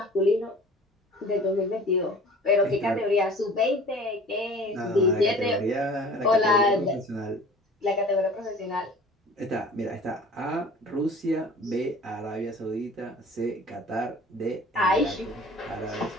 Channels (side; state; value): both; normal; correlation 0.45